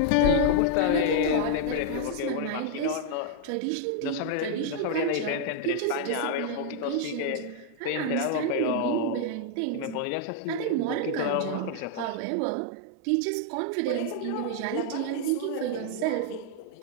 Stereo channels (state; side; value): different; both; correlation 0.00